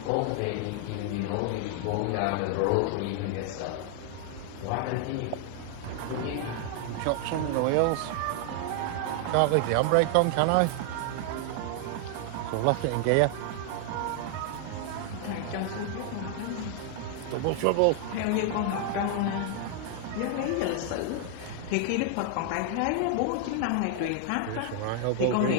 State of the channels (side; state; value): both; different; correlation 0.00